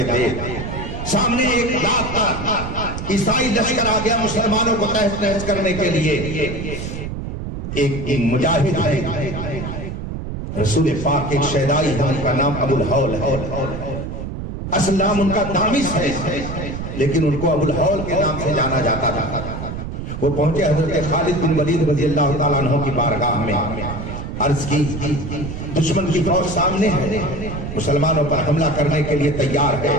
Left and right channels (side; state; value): right; noise; rumble, 6 dB below the sound